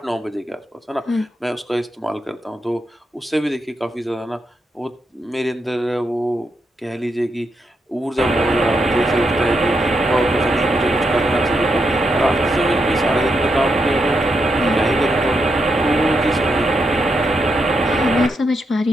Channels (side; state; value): both; normal; correlation 0.82